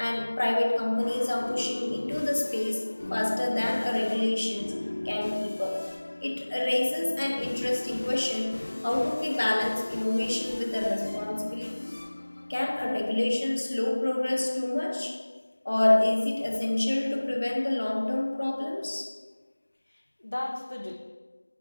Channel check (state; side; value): inverted; both; correlation -1.00